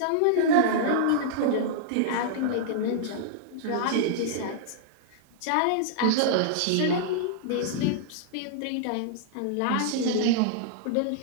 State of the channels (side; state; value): both; different; correlation -0.02